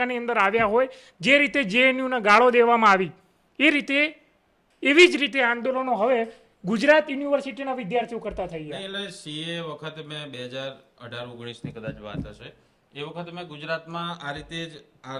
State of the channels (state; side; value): identical; both; correlation 1.00